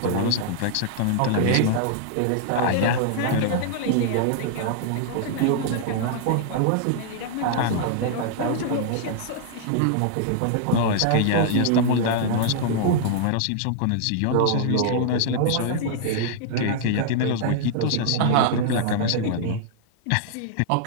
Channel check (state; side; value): different; both; correlation -0.01